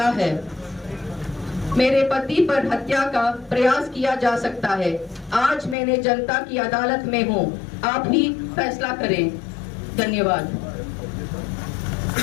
है। मेरे पति पर हत्या का प्रयास किया जा सकता है। आज मैंने जनता की अदालत में हूँ, आप ही फैसला करें। धन्यवाद।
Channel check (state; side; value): drops out; right; at 5.8 s